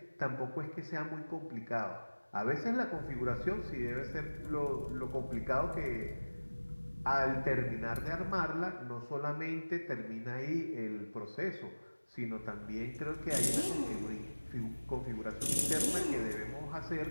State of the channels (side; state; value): both; inverted; correlation -1.00